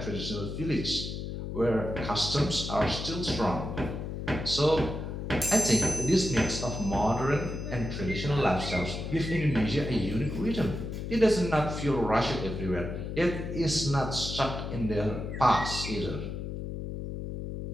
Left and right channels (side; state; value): left; noise; hum, 6 dB below the sound